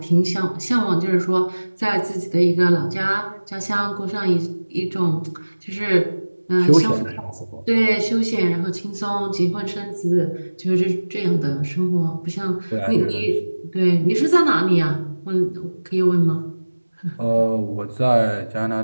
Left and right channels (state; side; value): inverted; both; correlation -1.00